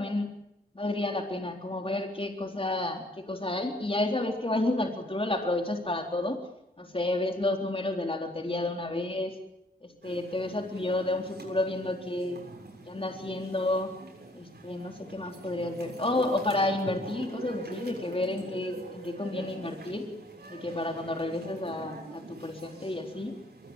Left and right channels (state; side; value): normal; both; correlation 0.61